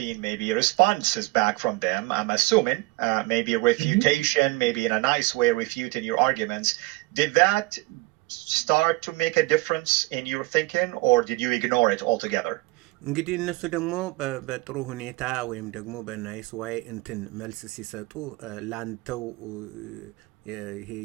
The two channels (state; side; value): quieter; left; 21.8 dB